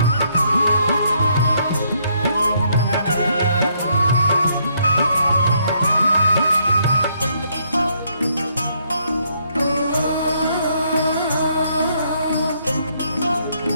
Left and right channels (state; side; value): inverted; both; correlation -0.71